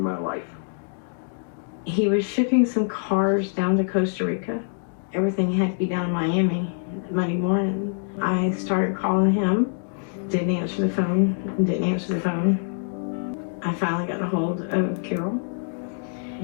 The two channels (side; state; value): right; silent; digital silence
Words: life. He was shipping some cars down to Costa Rica. Everything had to be down in Miami Monday morning. I started calling him, didn't answer the phone. I finally got a hold of Carole.